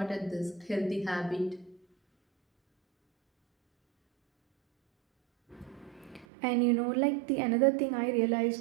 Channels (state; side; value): drops out; left; at 6.2 s